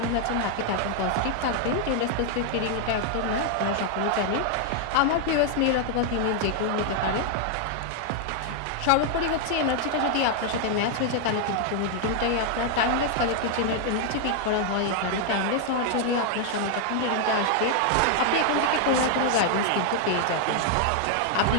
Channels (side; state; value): both; different; correlation 0.00